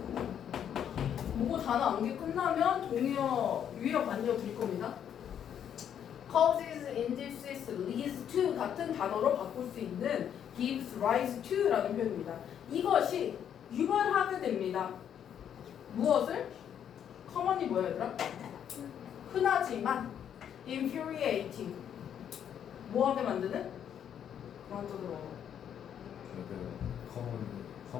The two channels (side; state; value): right; quieter; 9.1 dB